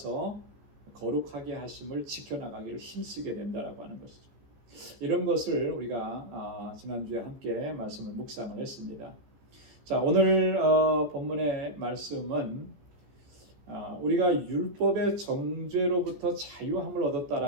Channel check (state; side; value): late; left; 14 ms